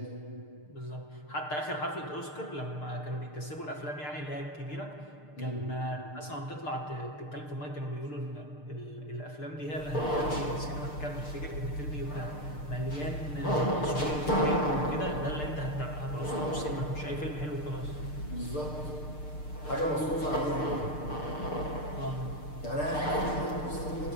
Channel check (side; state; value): right; late; 6.7 ms